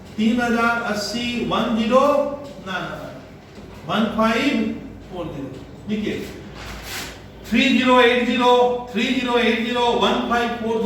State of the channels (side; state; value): both; identical; correlation 1.00